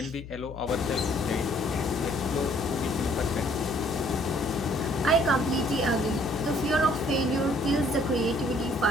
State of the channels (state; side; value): noise; left; hum, 13 dB below the sound